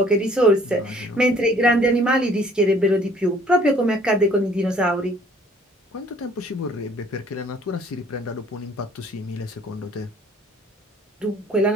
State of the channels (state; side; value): normal; both; correlation 0.57